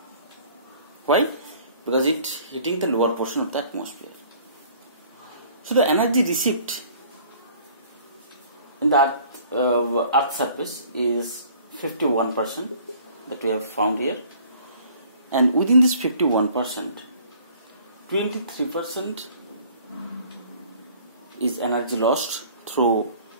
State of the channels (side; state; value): both; inverted; correlation -0.53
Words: Why? Because it heating the lower portion of the atmosphere. So the energy received in the Earth surface is 51% that we have found here, and within this 51%, 23% is energy lost through